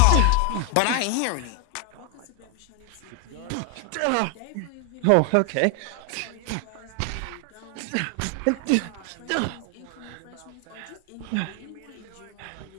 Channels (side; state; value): both; different; correlation 0.00